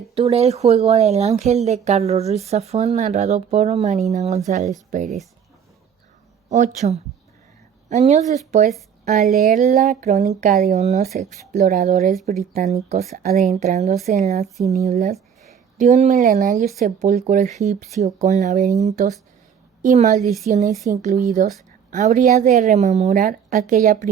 El juego del ángel de Carlos Ruiz Zafón, narrado por Marina González Pérez. 8. Años después, al leer la crónica de unos exploradores británicos adentrándose en las tinieblas de un milenario sepulcro egipcio con laberintos y maldiciones incluidos, habría de rememorar aquella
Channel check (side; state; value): left; quieter; 7.8 dB